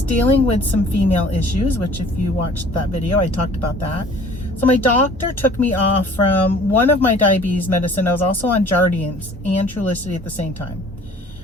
dealing with some female issues, which if you watched that video, I talked about that. So my doctor took me off from one of my diabetes medicine. I was also on Jardiance and Trulicity at the same time.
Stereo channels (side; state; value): both; normal; correlation 0.50